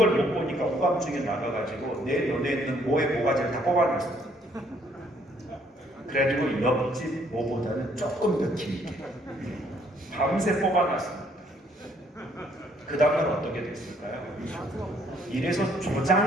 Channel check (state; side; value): normal; both; correlation 0.66